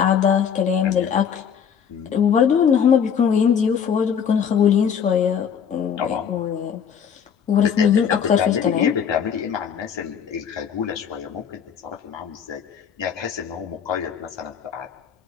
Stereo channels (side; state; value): right; quieter; 7.6 dB